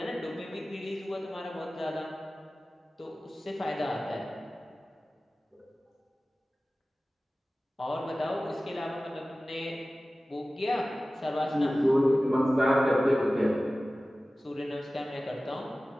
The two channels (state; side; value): normal; both; correlation 0.96